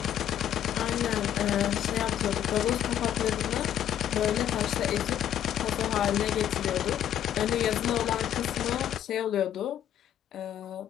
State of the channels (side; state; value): right; quieter; 10.5 dB